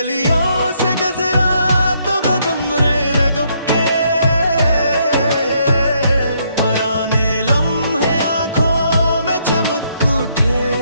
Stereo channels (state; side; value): inverted; both; correlation -0.72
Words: से गुजरा तो कदम रे रगब के, पराने लम्हे आंखों में चमक उठे।